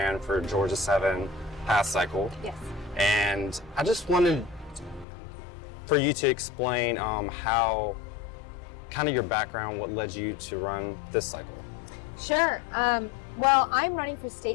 for Georgia 7 past cycle. Yes. And I just wanted for you to explain how, kind of your background, what led you to run this cycle. Sure. Well, I'm running for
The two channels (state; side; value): drops out; right; at 5.1 s